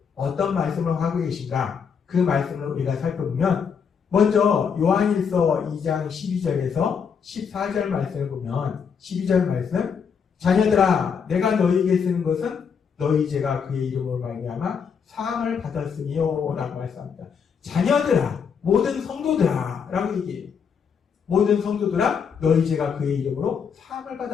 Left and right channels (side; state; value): right; quieter; 6.6 dB